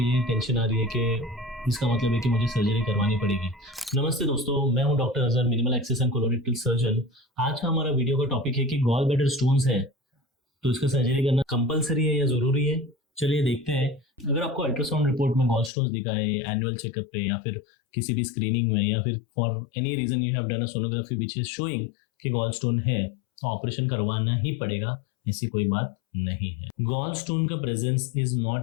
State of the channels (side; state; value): right; drops out; at 15.7 s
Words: टेंशन आ रही है कि इसका मतलब है कि मुझे सर्जरी करवानी पड़ेगी। नमस्ते दोस्तों, मैं हूं doctor Azhar, minimal access and colorectal surgeon. आज का हमारा वीडियो का टॉपिक है कि गॉल ब्लैडर स्टोन्स है तो इसका सर्जरी करना कंपलसरी है या जरूरी है। चलिए देखते हैं। अगर आपको अल्ट्रासाउंड रिपोर्ट में गॉल स्टोन्स दिखा है एनुअल चेकअप पे या फिर किसी भी स्क्रीनिंग में या फिर for any reason you have done a sonography which is showing कि गॉल स्टोन है, तो ऑपरेशन करवाना ही पड़ेगा, ऐसी कोई बात नहीं है। गॉल स्टोन का presence is